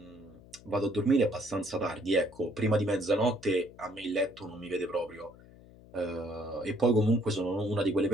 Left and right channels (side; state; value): left; noise; hum, 22 dB below the sound